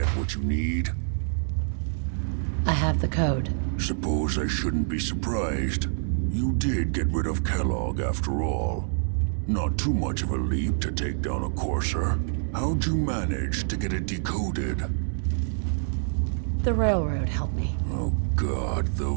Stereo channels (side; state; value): left; silent; 61 dB below the other